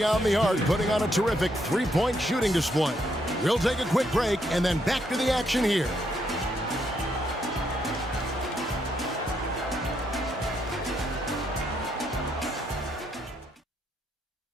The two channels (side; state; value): both; normal; correlation 0.76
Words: the arc putting on a terrific 3-point shooting display. We'll take a quick break and then back to the action here.